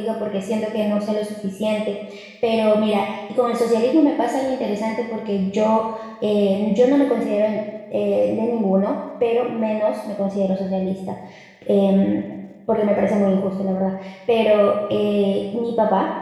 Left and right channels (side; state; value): both; identical; correlation 1.00